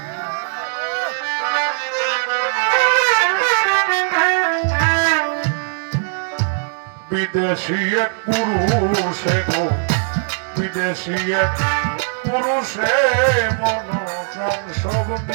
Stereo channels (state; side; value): silent; left; digital silence